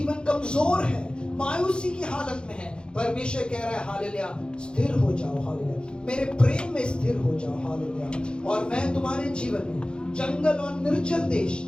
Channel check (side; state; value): right; late; 0.052 ms